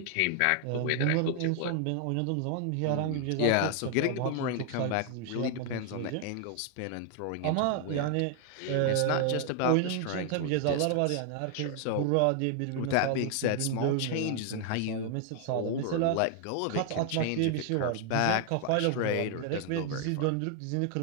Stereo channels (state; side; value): different; both; correlation 0.00